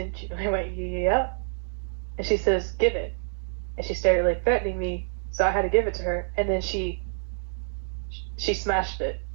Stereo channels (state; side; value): silent; left; digital silence